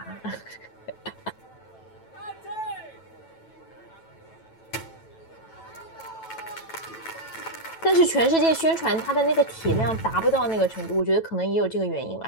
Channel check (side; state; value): right; late; 9.1 ms